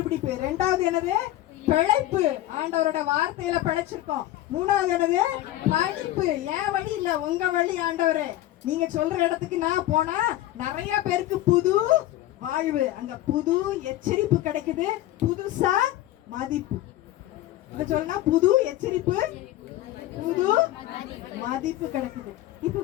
ரெண்டாவது என்னது? பிழைப்பு. ஆண்டவரோட வார்த்தையில பிழைச்சிருக்கோம். மூணாவது என்னது? படிப்பு. ஏன் வழி இல்ல, உங்க வழி ஆண்டவரே. நீங்க சொல்ற இடத்துக்கு நான் போனா நிறைய பேருக்கு புது வாழ்வு, அங்க புது எச்சரிப்பு கிடைக்குது, புதுசா மதிப்பு. இத சொல்லனா புது எச்சரிப்பு, புது மதிப்பு கிடைக்குது. இப்ப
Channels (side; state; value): right; quieter; 14.8 dB